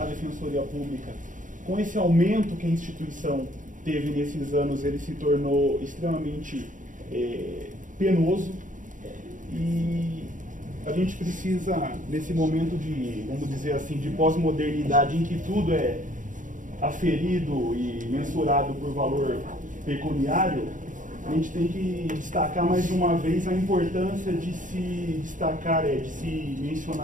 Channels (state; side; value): late; left; 0.38 ms